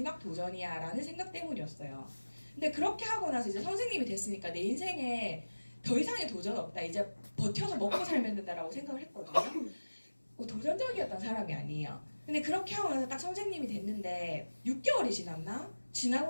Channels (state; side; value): inverted; both; correlation -1.00